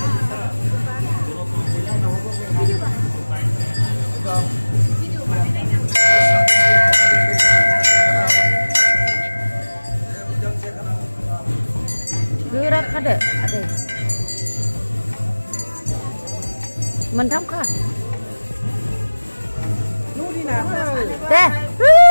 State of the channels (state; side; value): inverted; both; correlation -1.00